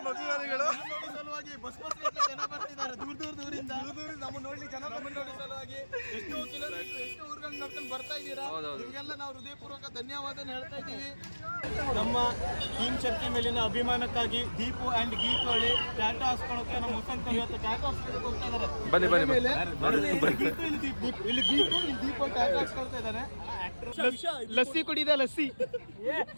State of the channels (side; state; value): both; inverted; correlation -1.00